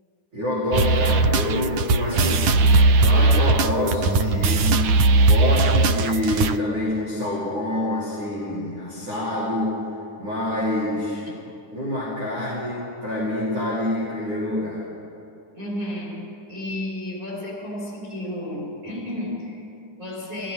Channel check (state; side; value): late; left; 9.8 ms